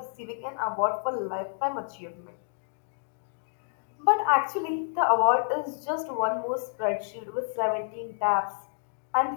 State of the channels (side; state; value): right; silent; digital silence